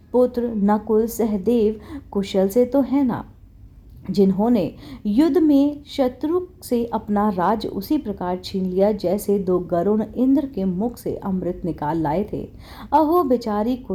पुत्र नकुल सहदेव कुशल से तो है ना, जिन्होंने युद्ध में शत्रु से अपना राज उसी प्रकार छीन लिया जैसे दो गरुण इंद्र के मुख से अमृत निकाल लाए थे। अहो बेचारी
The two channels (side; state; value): both; identical; correlation 1.00